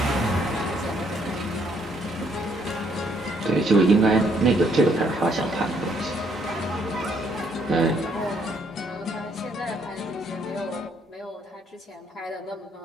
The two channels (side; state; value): both; normal; correlation 0.69